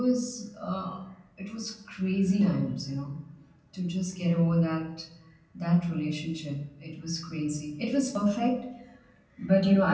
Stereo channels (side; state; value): both; identical; correlation 1.00